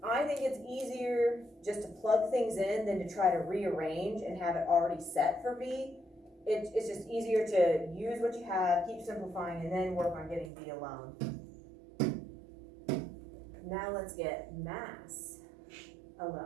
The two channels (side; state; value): left; drops out; at 10.5 s